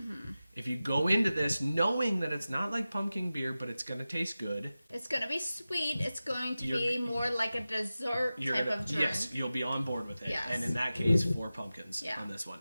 If you go into this knowing that it's not like pumpkin beer, but it's going to taste good. It's going to be sweet. It's going to be more like a dessert type of drink. Yes, you'll be on board with it. Yes. And in that case, 4 pumpkins on this one.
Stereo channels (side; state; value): both; inverted; correlation -0.95